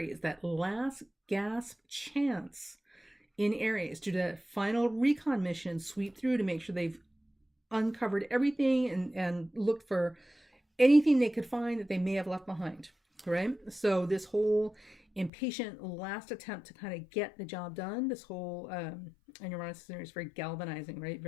that last gasp chance in Aries to that final recon mission, sweep through to make sure they've uncovered everything and looked for anything they could find that they may have left behind, right? So this whole impatient last attempt to kind of get the job done, this whole, and Uranus is very galvanizing, right?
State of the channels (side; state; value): right; drops out; at 15.3 s